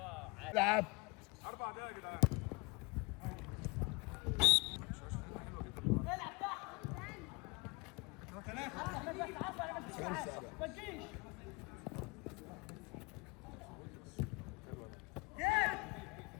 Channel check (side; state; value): right; quieter; 27.6 dB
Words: العب. 4 دقايق يا جدعان. العب تحت. ما تجيش.